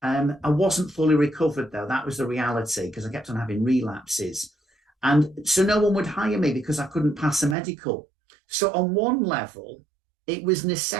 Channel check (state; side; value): drops out; left; at 7.6 s